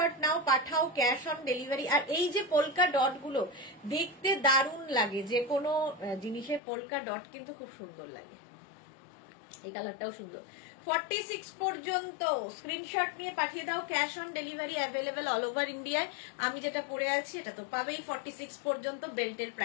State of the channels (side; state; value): right; drops out; at 6.6 s